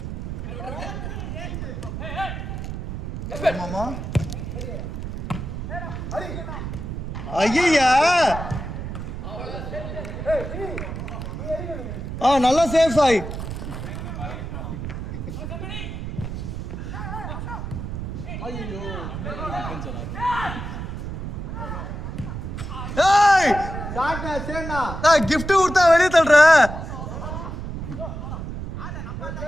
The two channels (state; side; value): noise; right; rumble, 6 dB below the sound